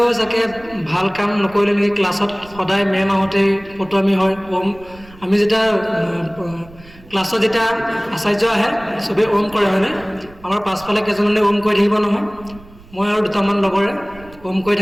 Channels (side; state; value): right; noise; rumble, 22 dB below the sound